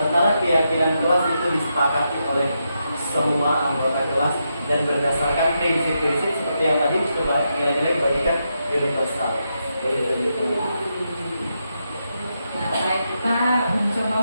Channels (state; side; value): inverted; both; correlation -0.84